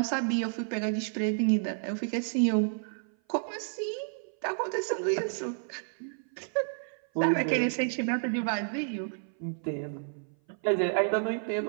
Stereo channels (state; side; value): silent; left; 56 dB below the other